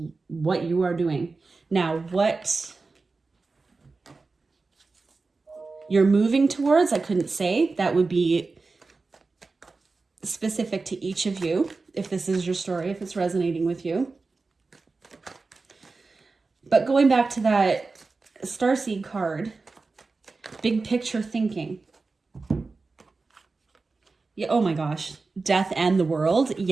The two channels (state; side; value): quieter; left; 3.9 dB